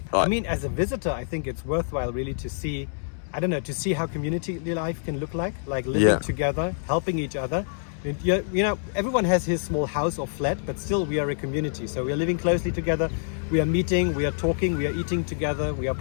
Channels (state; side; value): silent; right; digital silence